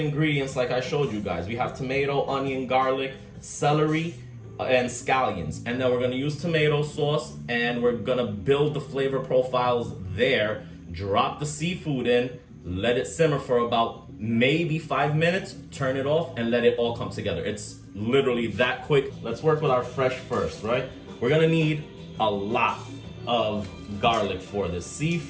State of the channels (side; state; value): both; identical; correlation 1.00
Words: like I showed you guys. We have tomato, onion, garlic, celery, and scallions. And then we're gonna use tomato sauce, and we're gonna build the flavor profiles there. Drop the seafood in, let it simmer for about maybe 5 minutes, turn it off, and let it all come together. It's literally that quick. Let's work with our fresh first, right? We're gonna need a lot of garlic for this.